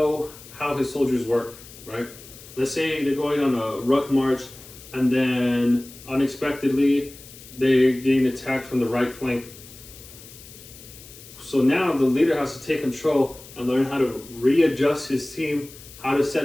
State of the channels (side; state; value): left; noise; hiss, 18 dB below the sound